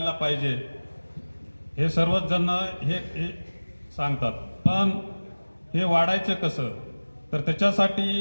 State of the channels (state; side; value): inverted; both; correlation -1.00